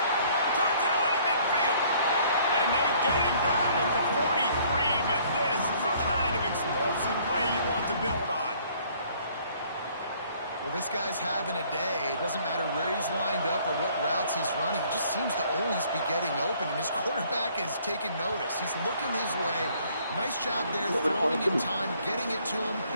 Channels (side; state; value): both; inverted; correlation -0.60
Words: Turns it on in midfield. And they get him down at the 43, but this is the kind of explosive play you want to build on. Well, this guy's having a day. It doesn't matter where he's lined up or what routes he's running. He just seems to always be getting open, and his quarterback is taking notice. He's looking his way. Nice job there, throwing in time, getting it to him